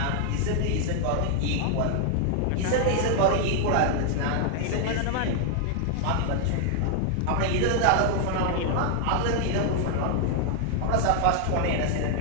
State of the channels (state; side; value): different; both; correlation 0.00